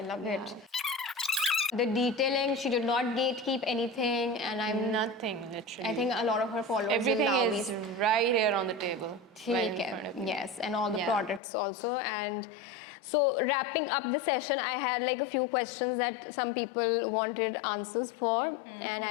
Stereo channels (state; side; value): drops out; right; at 11.4 s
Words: it. The detailing, she did not gatekeep anything, and I'm Nothing literally. I think a lot of her followers everything will now is be right here on the table. Right in ठीक front of है. you. Yes, and all the Yeah. products also. And so wrapping up the session, I had like a few questions that some people wanted answers for, and